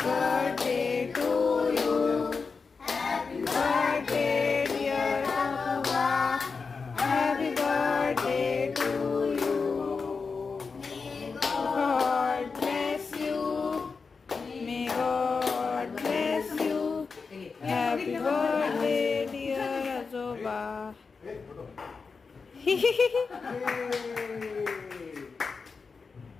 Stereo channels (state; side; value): quieter; right; 4.9 dB